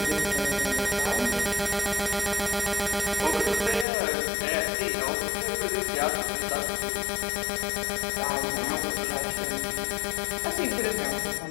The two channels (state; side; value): drops out; right; at 3.9 s